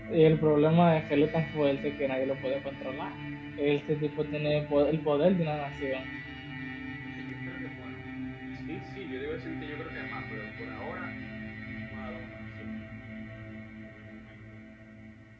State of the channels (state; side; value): identical; both; correlation 1.00